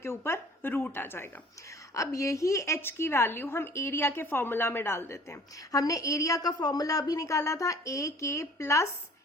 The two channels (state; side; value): normal; both; correlation 0.50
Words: ऊपर रूट आ जाएगा। अब यही h की वैल्यू हम एरिया के फॉर्मूला में डाल देते हैं। हमने एरिया का फॉर्मूला अभी निकाला था a k प्लस